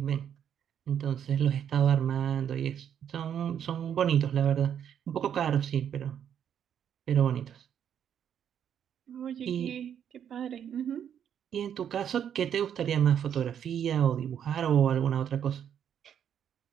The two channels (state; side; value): quieter; left; 8.9 dB